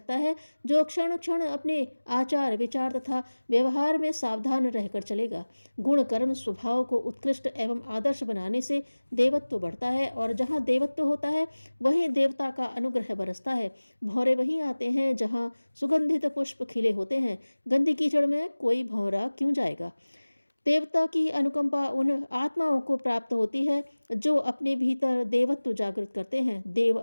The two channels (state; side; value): inverted; both; correlation -1.00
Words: है जो क्षण क्षण अपने आचार, विचार तथा व्यवहार में सावधान रहकर चलेगा। गुण, कर्म, स्वभाव को उत्कृष्ट एवं आदर्श बनाने से देवत्व बढ़ता है, और जहाँ देवत्व होता है वहीं देवता का अनुग्रह बरसता है। भौरे वहीं आते हैं जहाँ सुगंधित पुष्प खिले होते हैं। गंदी कीचड़ में कोई भौरा क्यों जाएगा? देवता की अनुकंपा उन आत्माओं को प्राप्त होती है जो अपने भीतर देवत्व जागृत करते हैं। देव